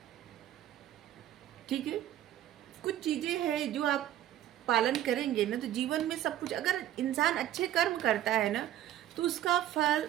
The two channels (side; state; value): left; quieter; 12.4 dB